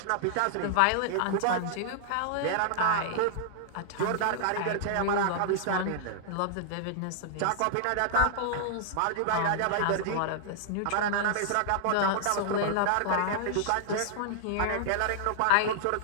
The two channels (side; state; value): both; different; correlation -0.01